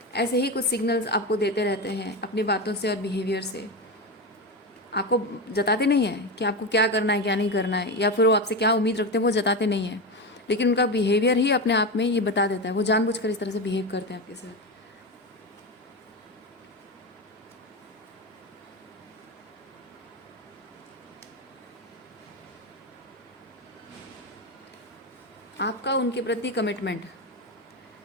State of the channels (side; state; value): both; normal; correlation 0.17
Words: ऐसे ही कुछ सिग्नल्स आपको देते रहते हैं अपनी बातों से और बिहेवियर से। आपको जताते नहीं हैं कि आपको क्या करना है क्या नहीं करना है, या फिर वो आपसे क्या उम्मीद रखते हैं वो जताते नहीं हैं, लेकिन उनका बिहेवियर ही अपने आप में ये बता देता है। वो जानबूझकर इस तरह से बिहेव करते हैं आपके साथ। आपका उनके प्रति कमिटमेंट,